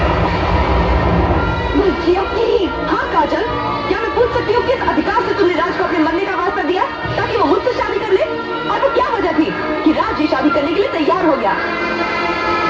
जिया प्लीज। हाँ काजल, क्या मैं पूछ सकती हूँ किस अधिकार से तुमने राज को अपने मरने का वास्ता दिया ताकि वो मुझसे शादी कर ले? और वो क्या वजह थी कि राज ये शादी करने के लिए तैयार हो गया?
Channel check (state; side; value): identical; both; correlation 1.00